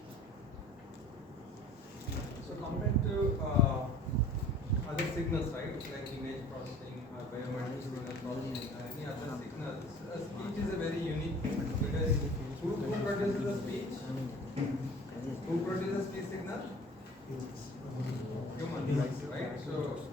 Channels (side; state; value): both; normal; correlation 0.47